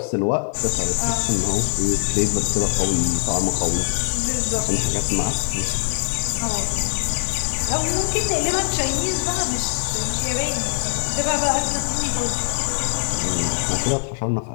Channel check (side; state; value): right; silent; digital silence